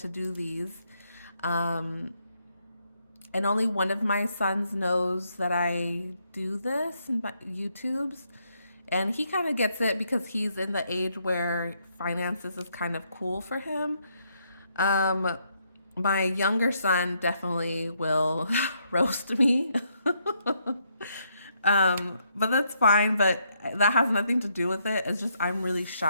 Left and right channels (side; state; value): both; inverted; correlation -0.75